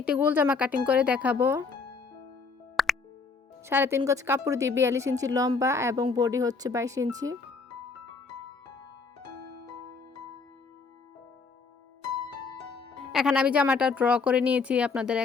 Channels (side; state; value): right; quieter; 4.6 dB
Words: একটি গোল জামা কাটিং করে দেখাবো। 3.5 গজ কাপড় দিয়ে 42 ইঞ্চি লম্বা এবং বডি হচ্ছে 22 ইঞ্চি। এখানে আমি জামাটা ড্র করে নিয়েছি, আপনাদের